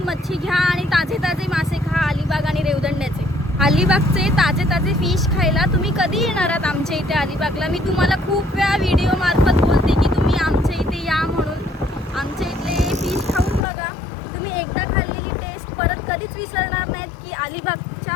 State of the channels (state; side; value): drops out; right; at 13.6 s